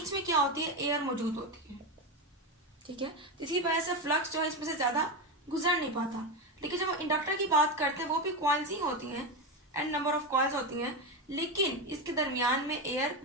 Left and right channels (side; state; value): both; normal; correlation 0.14